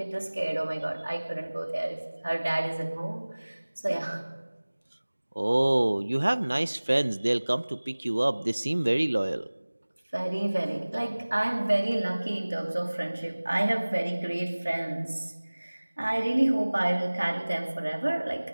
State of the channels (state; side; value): inverted; both; correlation -1.00